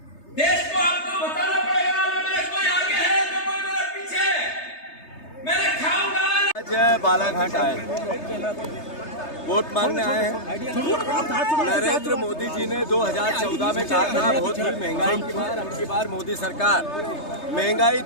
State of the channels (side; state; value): right; late; 3.3 ms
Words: देश को आपको बताना पड़ेगा ना मेरे कोई आगे है तो कोई मेरे पीछे। मैंने खाऊंगा। आज बालाघाट आए, वोट मांगने आए हैं। नरेंद्र मोदी जी ने 2014 में कहा था बहुत ही महंगाई की बार, अब की बार मोदी सरकार, महंगाई